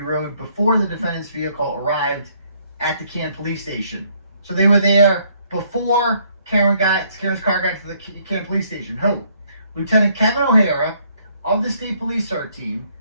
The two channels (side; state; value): both; inverted; correlation -0.68